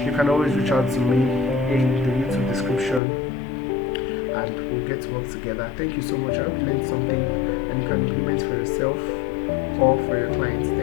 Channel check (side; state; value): right; drops out; at 3.0 s